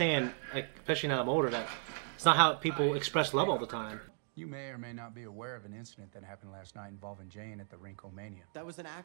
like, especially now I'm older, that it's not how people express love all the time. You may or may not be aware of an incident that happened last night involving Jane at the Rinkomania. That was an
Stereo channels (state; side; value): silent; left; 54 dB below the other